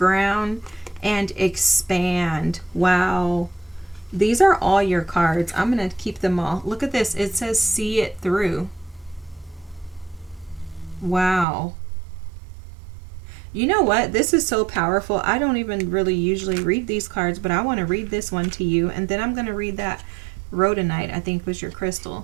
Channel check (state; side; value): drops out; left; at 11.5 s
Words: And expand. Wow. These are all your cards. I'm going to keep them all. Look at this. It says see it through. Wow. You know what? This is so powerful. I don't even really usually read these cards, but I want to read this one to you. And then I'm going to read that rhodonite, I think was your